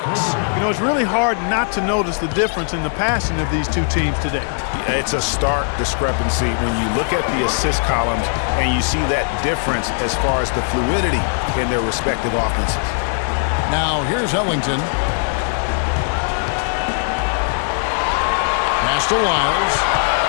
You know, it's really hard not to notice the difference in the passing of these two teams today. It's a stark discrepancy when you look at the assist columns and you see that difference as far as the fluidity in their respective offenses. Now here's Ellington. Pass to Wiles.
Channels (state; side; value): silent; right; 64 dB below the other